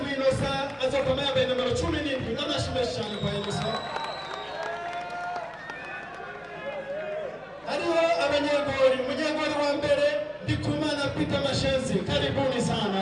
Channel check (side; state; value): both; identical; correlation 1.00